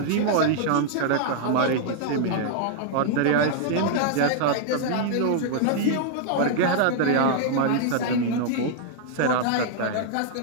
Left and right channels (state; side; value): different; both; correlation -0.01